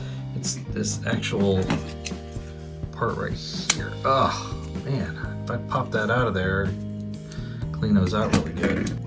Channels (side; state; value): both; identical; correlation 1.00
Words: It's this actual part right here. Oh man, if I pop that out of there, clean those out really good.